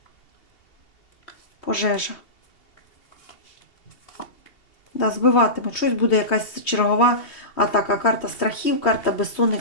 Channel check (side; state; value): right; late; 2.8 ms